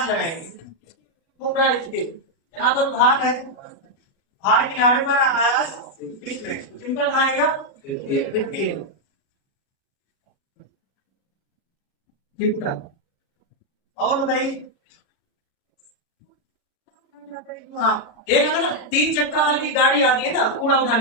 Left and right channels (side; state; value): right; late; 36 ms